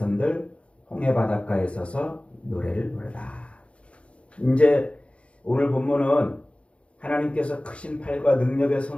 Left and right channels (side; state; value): right; late; 0.060 ms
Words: 홍해 바닷가에 서서 노래를 부르다. 이제 오늘 본문은 하나님께서 크신 팔과 능력의